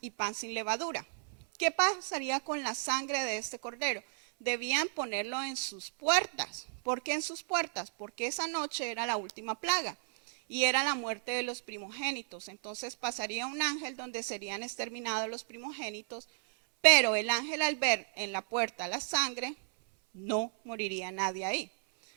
y pan sin levadura. ¿Qué pasaría con la sangre de este cordero? Debían ponerlo en sus puertas. ¿Por qué en sus puertas? Porque esa noche era la última plaga y era la muerte de los primogénitos. Entonces pasaría un ángel donde serían exterminados los primogénitos, pero el ángel al ver en la puerta la sangre, no moriría nadie ahí.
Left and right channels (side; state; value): left; silent; 55 dB below the other